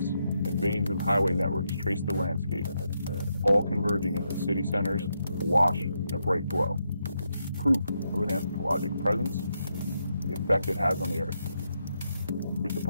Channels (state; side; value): inverted; both; correlation -0.82